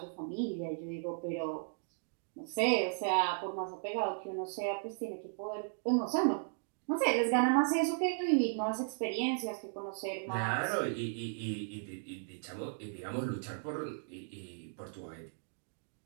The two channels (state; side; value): silent; left; digital silence